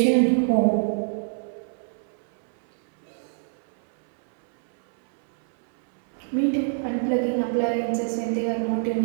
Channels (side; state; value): left; silent; 62 dB below the other